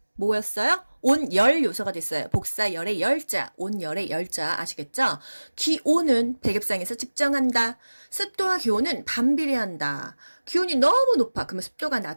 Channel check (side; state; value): both; inverted; correlation -1.00